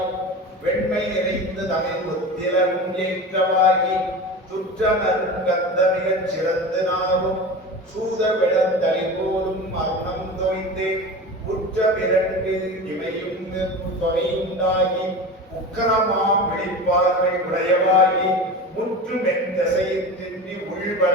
வெண்மை நிறைந்து தமிழ் ஒத்திலும் ஏற்றவாகி துற்ற நறுங்கந்த மிகச் சிறந்து நாவும் சூத விளந்தளி போலும் மரணம் தோய்ந்து உற்ற பிறண்டு இமையும் தொகையுண்டாகி உக்கரமாம் விழிப்பார்வை உடையவாகி முற்று மென்தசையின்றி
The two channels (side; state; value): both; normal; correlation 0.31